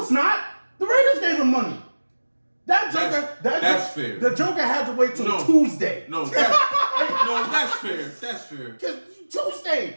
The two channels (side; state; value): both; inverted; correlation -1.00